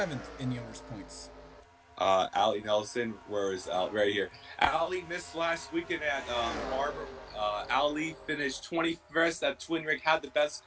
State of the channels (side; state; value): both; identical; correlation 1.00